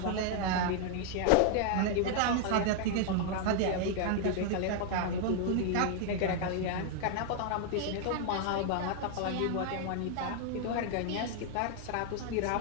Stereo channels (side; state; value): both; different; correlation 0.00